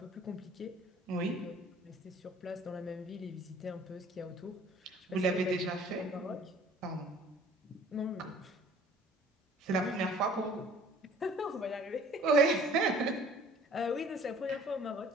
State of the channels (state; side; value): normal; both; correlation 0.51